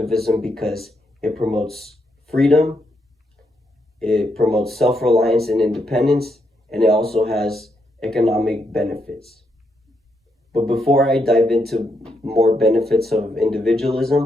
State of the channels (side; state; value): both; normal; correlation 0.79